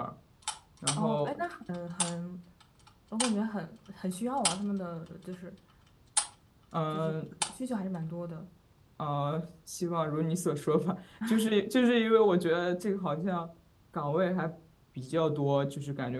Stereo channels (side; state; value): both; identical; correlation 1.00